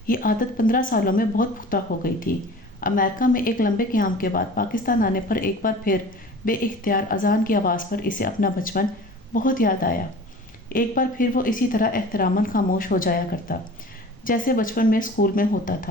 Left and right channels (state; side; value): normal; both; correlation 0.41